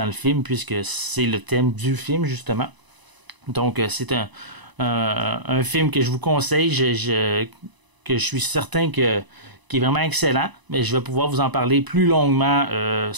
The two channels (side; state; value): left; late; 1.0 ms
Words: le film, puisque c'est le thème du film, justement. Donc, c'est un film que je vous conseille, que je suis certain qui est vraiment excellent, mais je vais pouvoir vous en parler plus longuement,